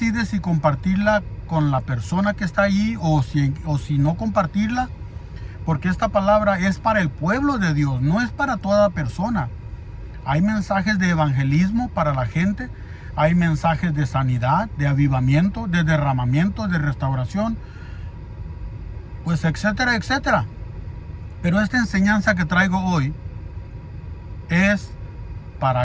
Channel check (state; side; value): identical; both; correlation 1.00